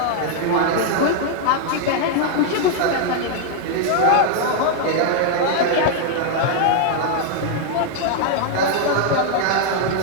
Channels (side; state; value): both; different; correlation 0.00